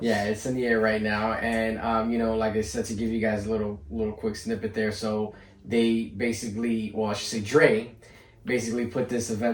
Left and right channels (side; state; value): both; identical; correlation 1.00